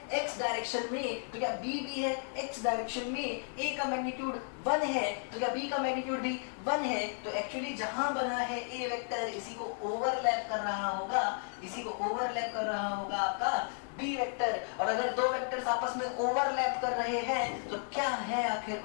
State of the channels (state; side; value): silent; right; 55 dB below the other